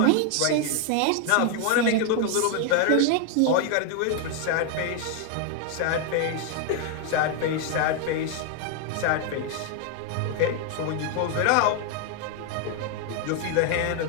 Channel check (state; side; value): different; both; correlation 0.00